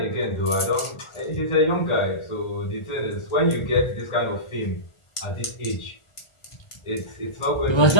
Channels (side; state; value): right; late; 1.4 ms